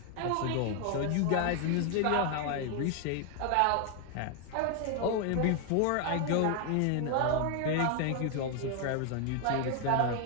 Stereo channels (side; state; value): both; different; correlation 0.01